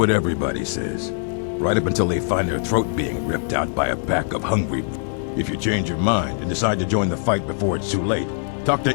everybody says. Right up until they find their throat being ripped out by a pack of hungry... If you change your mind and decide to join the fight before it's too late, talk to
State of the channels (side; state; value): right; silent; digital silence